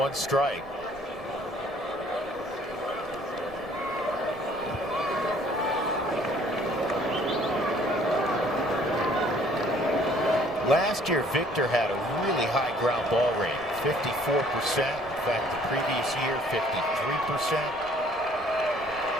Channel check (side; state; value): right; noise; rumble, 23 dB below the sound